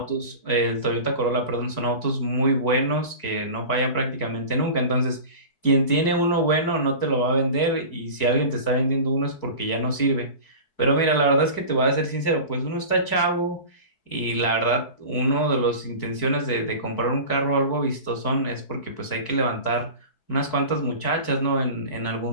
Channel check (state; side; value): late; right; 4.6 ms